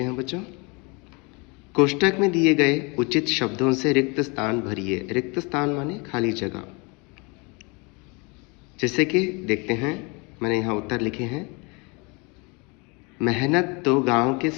हैं बच्चों। कोष्टक में दिए गए उचित शब्दों से रिक्त स्थान भरिए। रिक्त स्थान माने खाली जगह। जैसे कि देखते हैं, मैंने यहाँ उत्तर लिखे हैं। मेहनत तो गांव के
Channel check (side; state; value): right; quieter; 29.3 dB